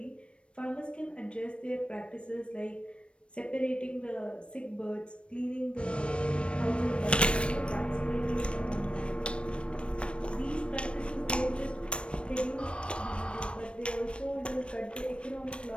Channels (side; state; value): right; late; 0.059 ms